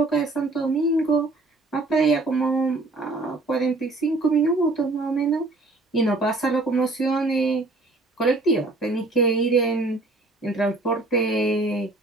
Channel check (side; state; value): left; quieter; 3.1 dB